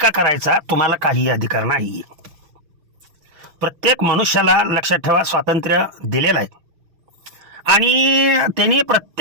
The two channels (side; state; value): left; late; 6.2 ms